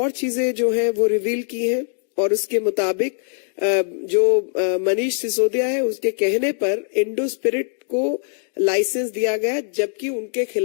चीजें जो है वो रिवील की हैं, और उसके मुताबिक जो मनीष सिसोदिया है उसके कहने पर इंडो स्पिरिट को लाइसेंस दिया गया, जबकि उनके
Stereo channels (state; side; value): silent; right; digital silence